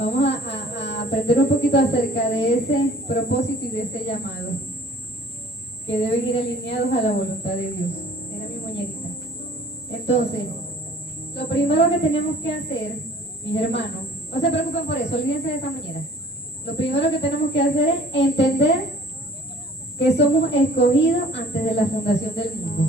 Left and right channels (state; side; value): normal; both; correlation 0.52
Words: a aprender un poquito acerca de ese propósito y de ese llamado, que deben ir alineados a la voluntad de Dios. Era mi muñequita. Entonces, lo primero que tenemos que hacer, mis hermanos, no se preocupen por eso, olvídense de esa muñeca. Lo primero que tenemos que hacer es entender que somos escogidos antes de la fundación del